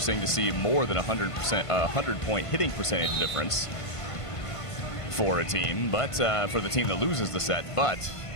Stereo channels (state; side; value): late; right; 1.5 ms